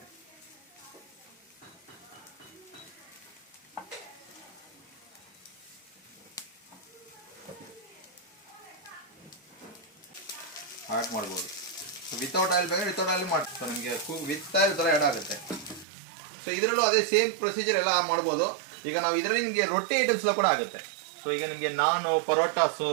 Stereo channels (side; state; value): left; drops out; at 15.9 s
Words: ಆ್ಯಡ್ ಮಾಡ್ಬೋದು. ಸೊ ವಿತೌಟ್ ಆಯಿಲ್ ಬೇಕಾದ್ರೆ ವಿತೌಟ್ ಆಯಿಲ್ ಮಾಡಿ. ಸೊ ನಿಮಗೆ ವಿತ್ ಆಯಿಲ್ ಥರ ಆ್ಯಡ್ ಆಗುತ್ತೆ. ಸೊ ಇದರಲ್ಲೂ ಅದೇ ಸೇಮ್ ಪ್ರೊಸೀಜರ್ ಎಲ್ಲ ಮಾಡ್ಬೋದು. ಈಗ ನಾವು ಇದರಲ್ಲಿ ನಿಮಗೆ ರೊಟ್ಟಿ ಐಟಮ್ಸ್ ಎಲ್ಲ ಕೂಡ ಆಗುತ್ತೆ. ಸೊ ಈಗ ನಿಮಗೆ ನಾನು, ಪರೋಟಾಸು,